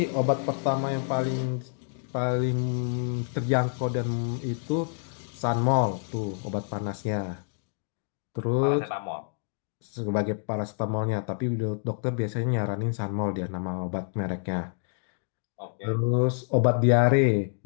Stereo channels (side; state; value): right; silent; 56 dB below the other